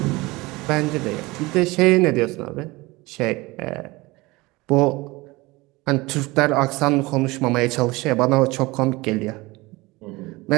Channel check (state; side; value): quieter; left; 22.0 dB